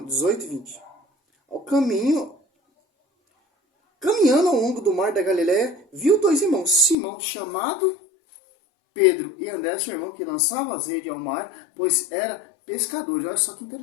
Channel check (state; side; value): drops out; right; at 7.0 s